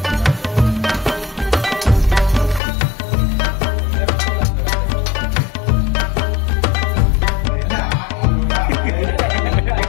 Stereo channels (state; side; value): drops out; right; at 2.6 s